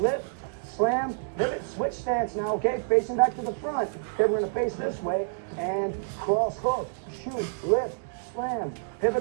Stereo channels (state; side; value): silent; left; digital silence